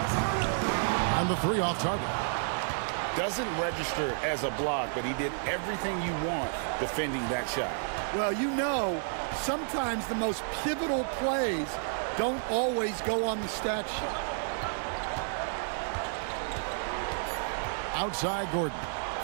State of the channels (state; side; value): silent; left; digital silence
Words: And the three off target. Doesn't register as a block, but he did everything you want defending that shot. Well, you know, sometimes the most pivotal plays don't always go on the stat sheet. Outside Gordon.